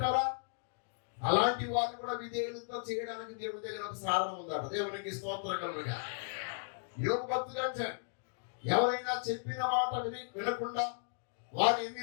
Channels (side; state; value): right; silent; digital silence